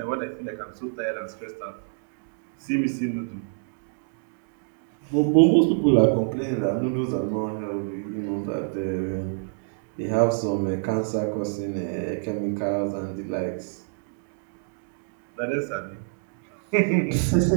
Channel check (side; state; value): left; silent; 61 dB below the other